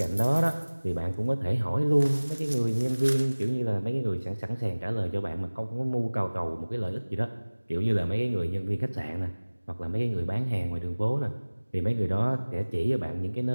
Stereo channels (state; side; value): inverted; both; correlation -1.00